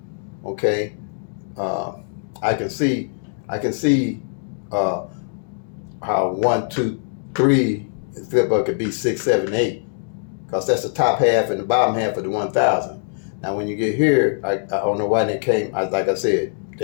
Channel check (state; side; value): silent; right; digital silence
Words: Okay, I can see how 1, 2, 3 flip up could be 6, 7, 8, because that's the top half and the bottom half of the 1,000. Now, when you get here, I don't know why they came. Like I said,